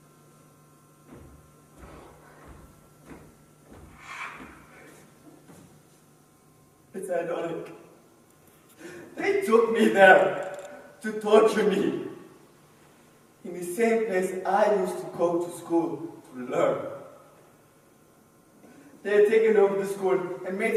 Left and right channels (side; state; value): both; identical; correlation 1.00